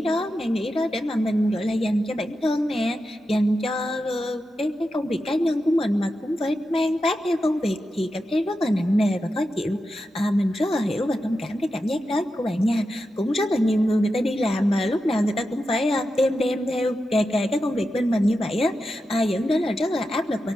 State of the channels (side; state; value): both; normal; correlation 0.90